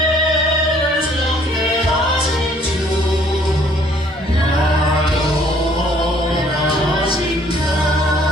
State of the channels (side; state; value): both; normal; correlation 0.60